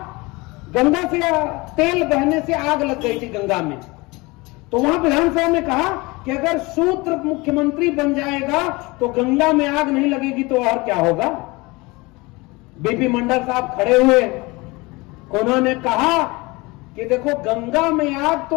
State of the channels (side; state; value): right; quieter; 24.0 dB